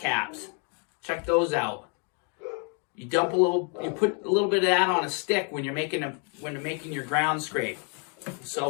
Check those out. You put a little bit of that on a stick when you're making your ground scrape.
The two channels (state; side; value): quieter; right; 38.0 dB